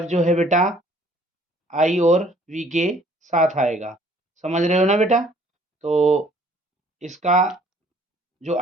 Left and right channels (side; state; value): both; normal; correlation 0.58